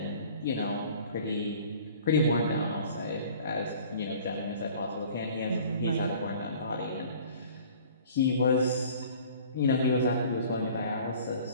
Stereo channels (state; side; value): inverted; both; correlation -0.49